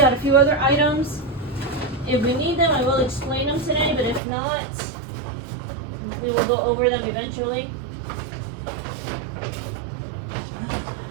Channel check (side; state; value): left; drops out; at 4.2 s